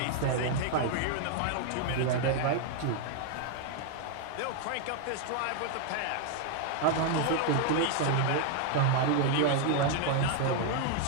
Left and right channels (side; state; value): both; different; correlation 0.00